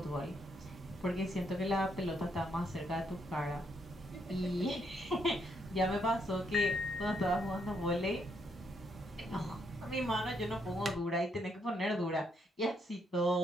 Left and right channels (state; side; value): normal; both; correlation 0.75